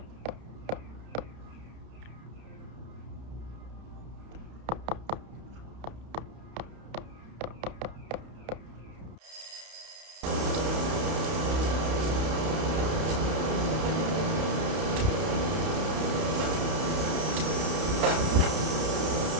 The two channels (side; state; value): left; late; 31 ms